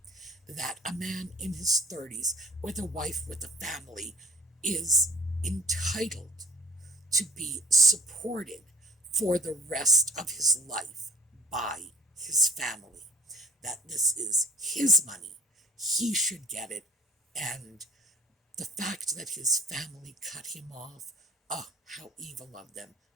that a man in his 30s with a wife with a family is entitled to be supported for the rest of his life by his family, that this is his money, he should get it, and the fact that his family cut him off, oh, how evil of them.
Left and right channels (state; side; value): normal; both; correlation 0.49